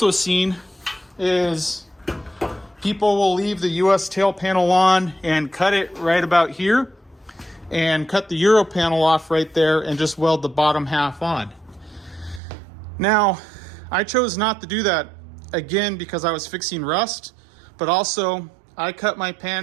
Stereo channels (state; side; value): drops out; left; at 12.4 s